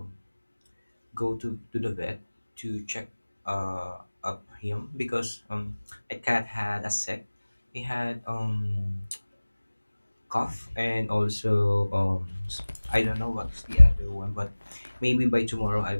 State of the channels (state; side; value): inverted; both; correlation -1.00